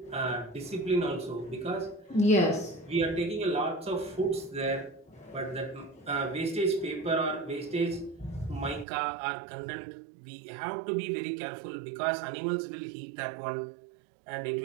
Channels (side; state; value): left; drops out; at 8.8 s